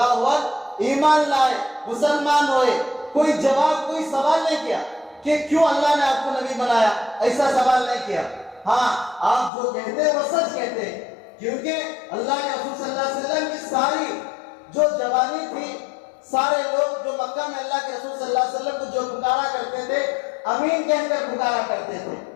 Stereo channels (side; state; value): right; drops out; at 9.5 s